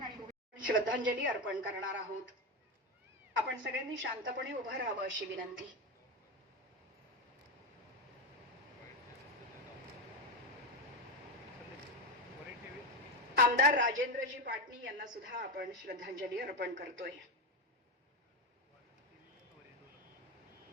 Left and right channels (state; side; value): normal; both; correlation 0.12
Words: आणि श्रद्धांजली अर्पण करणार आहोत. आपण सगळ्यांनी शांतपणे उभं राहावं अशी विनंती. आमदार राजेंद्रजी पाटणी यांना सुद्धा आपण श्रद्धांजली अर्पण करतोय.